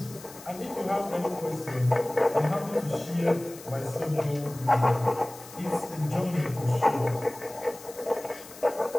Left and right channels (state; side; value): noise; left; hiss, 18 dB below the sound